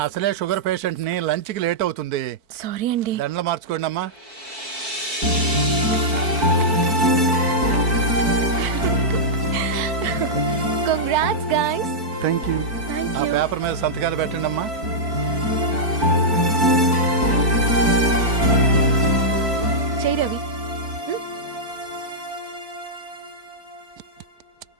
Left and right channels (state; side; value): late; left; 4.5 ms